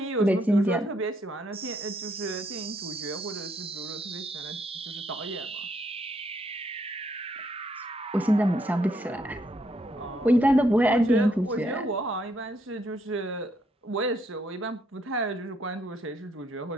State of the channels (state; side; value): normal; both; correlation 0.73